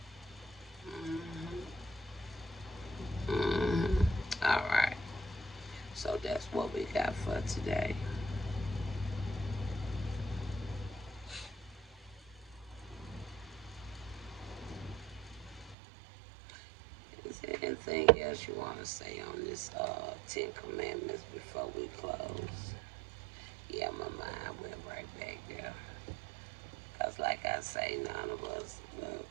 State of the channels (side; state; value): left; drops out; at 15.8 s